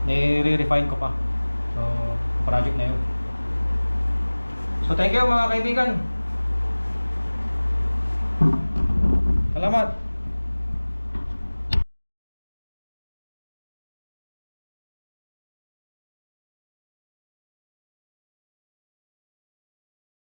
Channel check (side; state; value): both; inverted; correlation -1.00